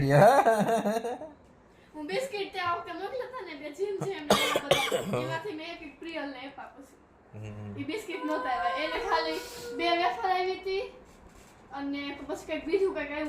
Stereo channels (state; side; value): identical; both; correlation 1.00